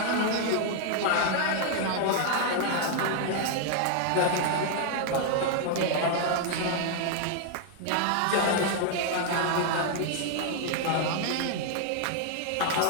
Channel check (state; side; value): different; both; correlation 0.00